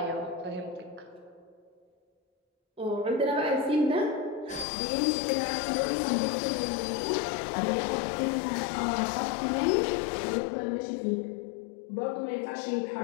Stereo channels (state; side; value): drops out; right; at 4.7 s